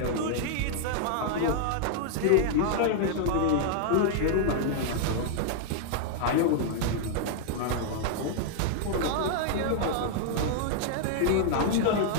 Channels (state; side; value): different; both; correlation -0.01